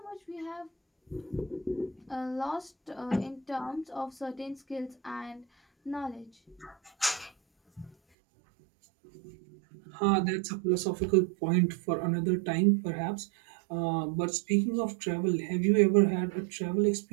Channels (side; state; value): left; drops out; at 8.0 s